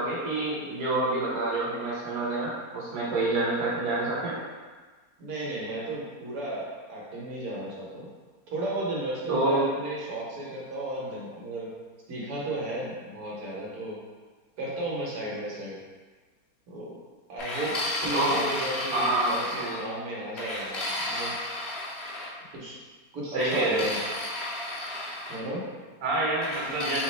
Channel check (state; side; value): late; left; 4.3 ms